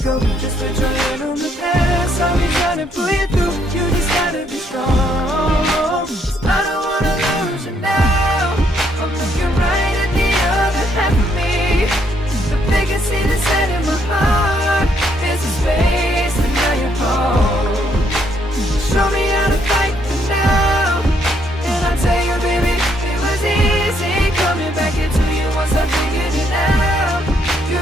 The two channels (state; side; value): normal; both; correlation 0.71